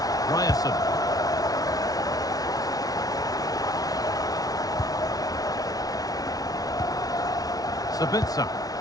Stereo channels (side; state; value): right; late; 0.18 ms